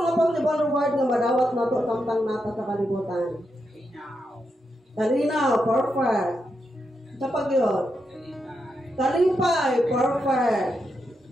possible reward nga madawat nato samtang nata sa kalibutan? Kalinaw, perfect. Sa pagyon. Kalipay, perfect.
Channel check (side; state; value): both; normal; correlation 0.84